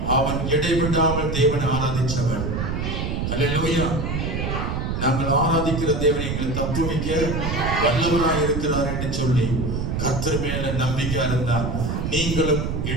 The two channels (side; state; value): right; noise; rumble, 2 dB below the sound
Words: அவன் இடைவிடாமல் தேவனை ஆராதிச்சவன். அல்லேலூயா. நாங்கள் ஆராதிக்கிற தேவனை எங்களை தப்புவிக்க வல்லவராய் இருக்கிறார் என்று சொல்லி கர்த்தர் மேல நம்பிக்கையா இருந்தால் நீங்களும்